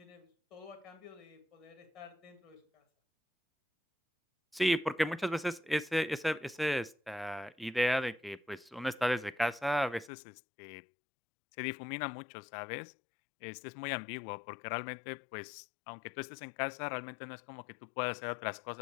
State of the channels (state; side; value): drops out; right; at 10.1 s